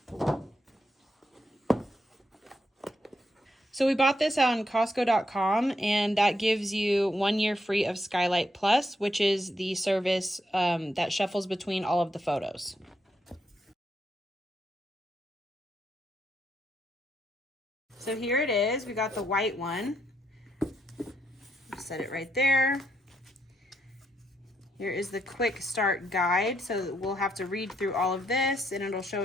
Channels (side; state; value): both; normal; correlation 0.78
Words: So we bought this on Costco.com, and that gives you 1 year free of Skylight Plus, which is the service that shuffles between all of the photos. So here it is. We got the white one. Set it right there. Here is the quick start guide. So we'll have to read through all of this, and it'll show